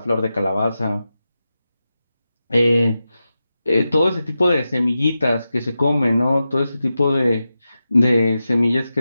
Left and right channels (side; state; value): both; inverted; correlation -0.91